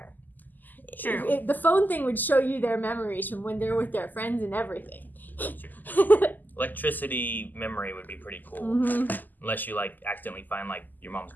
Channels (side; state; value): right; late; 0.085 ms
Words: True. The phone thing would show you their memories from when they're with their friends and everything. Electricity memory would be pretty cool. Mhm. Unless you, like, accidentally find, like, your mom's